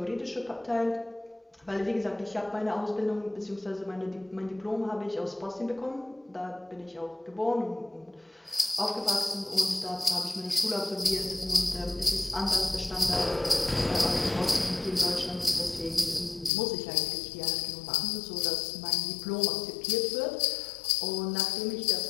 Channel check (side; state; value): right; drops out; at 16.5 s